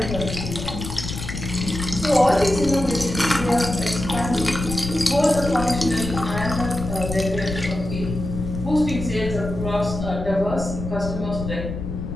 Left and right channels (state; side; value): noise; left; rumble, 6 dB below the sound